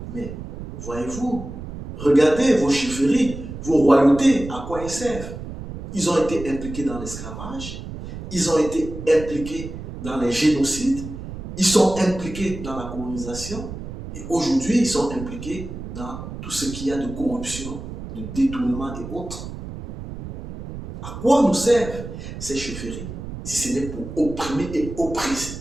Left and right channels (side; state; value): right; noise; rumble, 10 dB below the sound